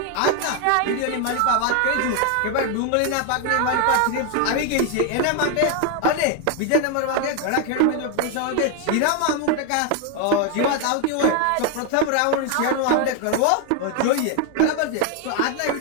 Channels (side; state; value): both; different; correlation 0.01